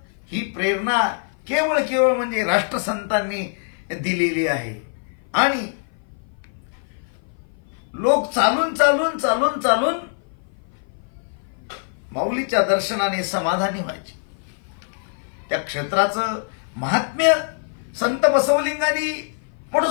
ही प्रेरणा केवळ म्हणजे राष्ट्रसंतांनी दिलेली आहे. आणि लोक चालून माऊलीच्या दर्शनाने समाधानी व्हायचे. त्या क्षेत्राचं महात्म्य संत बसवलिंगांनी पण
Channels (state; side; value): silent; right; 57 dB below the other